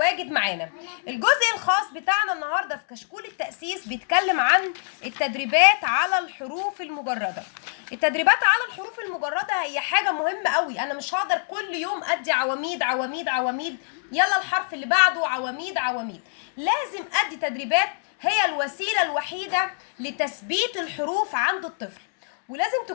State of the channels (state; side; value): silent; right; digital silence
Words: معانا. الجزء الخاص بتاعنا النهاردة في كشكول التأسيس بيتكلم عن التدريبات على الحروف المجردة. التدريبات على الحروف المجردة هي حاجة مهمة قوي، انا مش هقدر كل يوم ادي عواميد عواميد عواميد، يلا الحرف اللي بعده عواميد عواميد. لازم ادي تدريبات، هي الوسيلة الوحيدة لتثبيت الحروف عند الطفل، ولازم